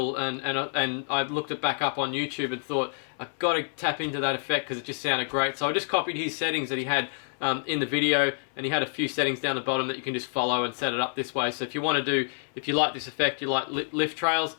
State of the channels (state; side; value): silent; right; 60 dB below the other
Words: and I looked it back up on YouTube and thought, I've got to tap into that effect because it just sounded great. So I just copied his settings that he had in the video, and he had a few settings down the bottom that you can just follow and set it up this way. So if you want to do, if you like this effect, you like lift trails,